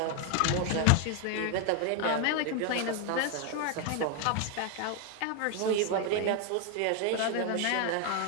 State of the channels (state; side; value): different; both; correlation 0.01